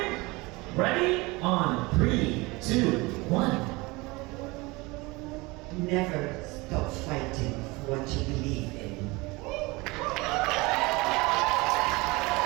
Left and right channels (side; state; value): left; quieter; 23.8 dB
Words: ready, on 3, 2, 1. Never stop fighting for what you believe in.